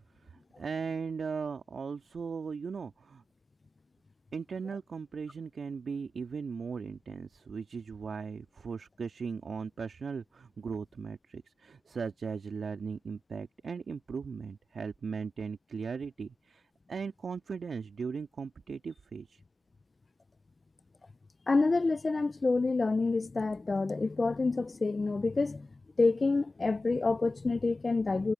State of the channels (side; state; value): both; normal; correlation 0.93